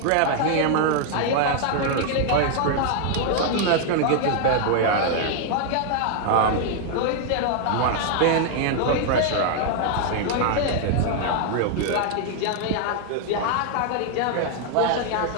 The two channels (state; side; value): different; both; correlation 0.00